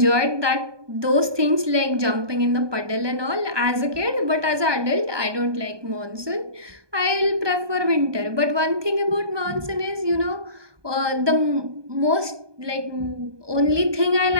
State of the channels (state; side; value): late; left; 1.2 ms